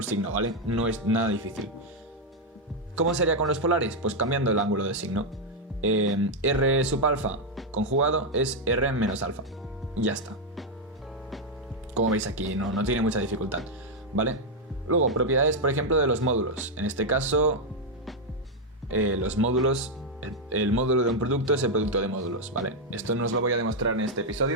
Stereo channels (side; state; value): both; normal; correlation 0.01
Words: signo, ¿vale? No es nada difícil. ¿Cómo sería con los polares? Pues cambiando el ángulo de signo. R sub alfa conjugado es R menos alfa. Y ya está. Como veis aquí, no tiene mucha dificultad, ¿vale? Luego, propiedades, por ejemplo, de los módulos. En este caso, los módulos... El módulo de un producto es el producto de módulos, ¿vale? Esto no os lo voy a demostrar en este